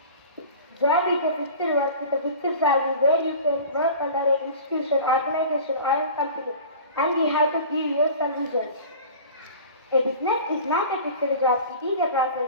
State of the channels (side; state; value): both; inverted; correlation -0.39